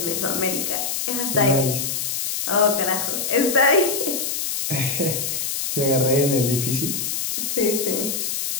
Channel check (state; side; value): noise; left; hiss, 2 dB below the sound